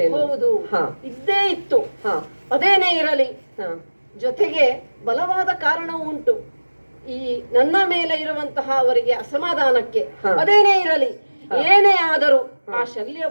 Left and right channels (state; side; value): inverted; both; correlation -1.00